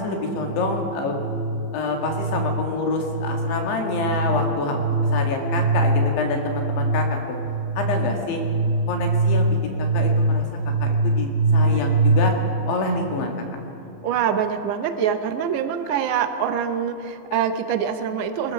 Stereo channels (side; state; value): right; late; 15 ms